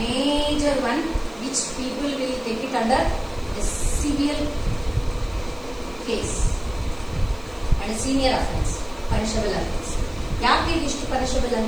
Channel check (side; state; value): left; noise; hiss, 27 dB below the sound